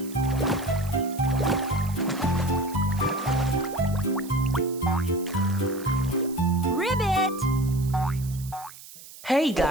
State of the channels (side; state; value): right; noise; hiss, 17 dB below the sound